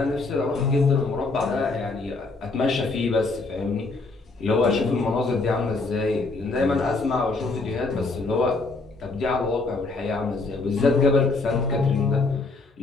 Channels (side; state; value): right; quieter; 3.6 dB